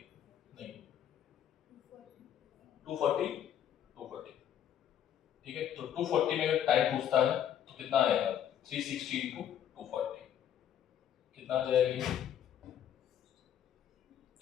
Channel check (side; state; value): right; quieter; 9.9 dB